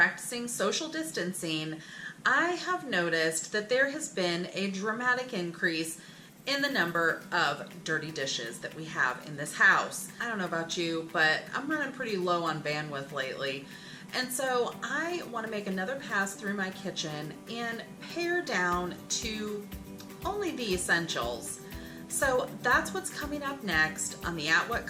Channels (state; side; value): identical; both; correlation 1.00